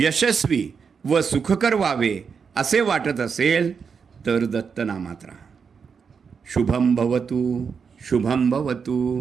व सुखकर व्हावे असे वाटत असेल तर दत्तनामात राहा. शुभम भवतु, शुभम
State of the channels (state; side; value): quieter; left; 6.1 dB